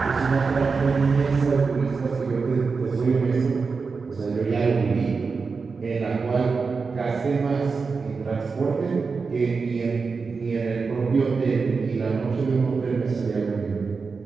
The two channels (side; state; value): left; quieter; 4.8 dB